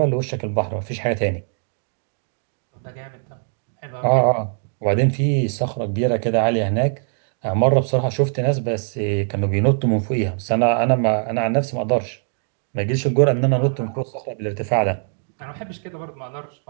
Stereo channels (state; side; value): silent; left; digital silence